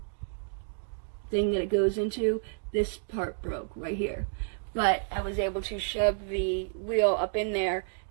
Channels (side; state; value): left; silent; digital silence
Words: thing that it goes into. This part broke right here, but I was able to shove the wheel up in there,